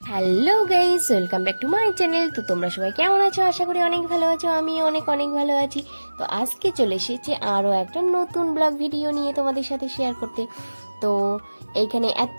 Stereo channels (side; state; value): both; inverted; correlation -1.00